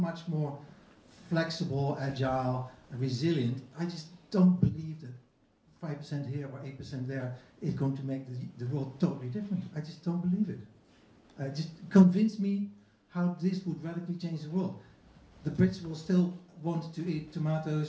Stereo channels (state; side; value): identical; both; correlation 1.00